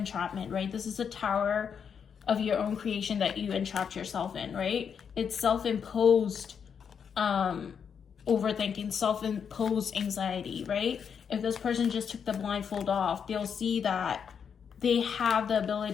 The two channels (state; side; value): quieter; right; 7.1 dB